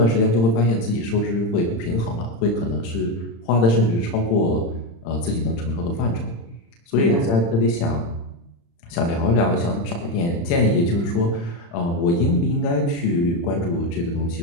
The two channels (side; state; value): right; late; 35 ms